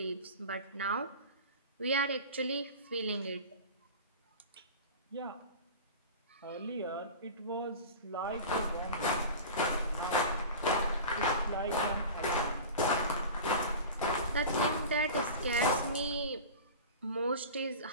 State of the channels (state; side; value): inverted; both; correlation -0.33